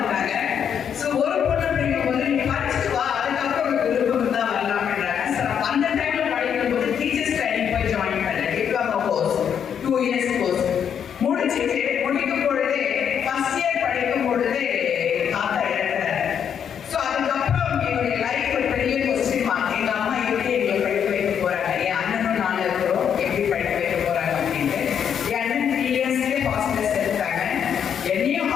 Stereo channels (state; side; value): quieter; right; 8.2 dB